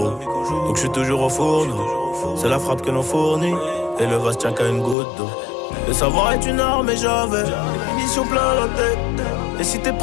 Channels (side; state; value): right; drops out; at 5.0 s